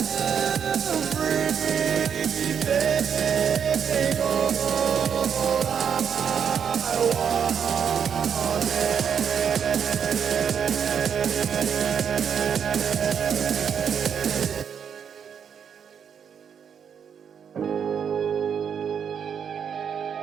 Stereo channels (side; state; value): left; quieter; 7.6 dB